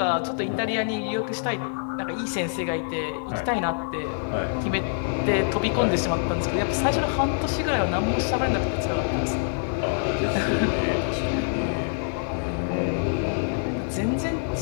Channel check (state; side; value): silent; right; 61 dB below the other